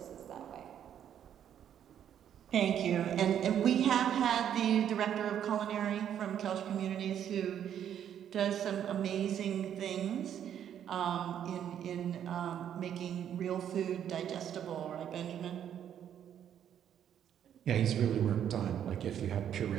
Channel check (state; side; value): quieter; left; 9.7 dB